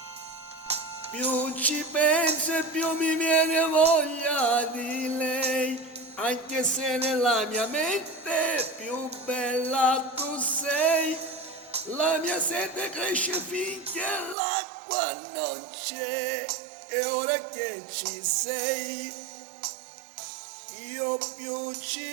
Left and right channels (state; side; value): drops out; left; at 14.4 s